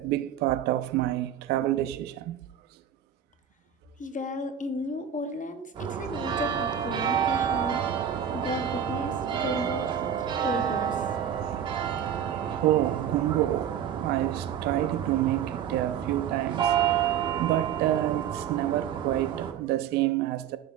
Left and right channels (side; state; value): left; quieter; 9.0 dB